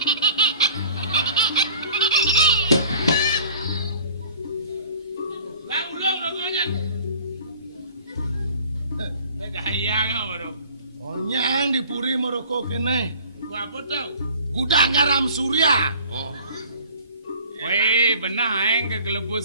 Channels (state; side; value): inverted; both; correlation -0.48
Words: Lang ulong rokoknya. Gaya baru. Onyang dipuri merokok kene. Gua apa tau? Gudang garam surya. Oh. Weh, benar aing